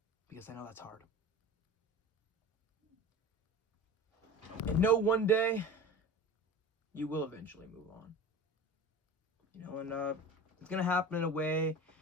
Because I know that's hard. And know one day you will eventually move on. And it's going to happen in a way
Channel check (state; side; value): normal; both; correlation 0.35